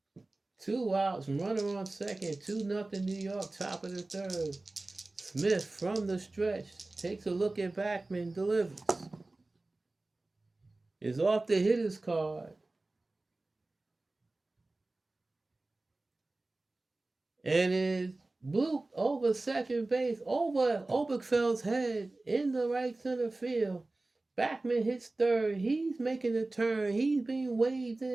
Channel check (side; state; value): left; quieter; 3.0 dB